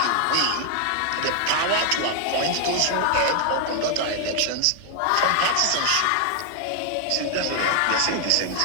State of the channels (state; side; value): different; both; correlation 0.00